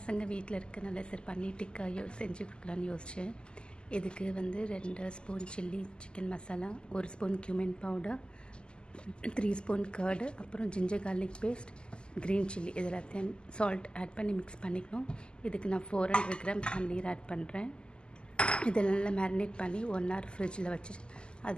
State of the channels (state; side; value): late; right; 0.049 ms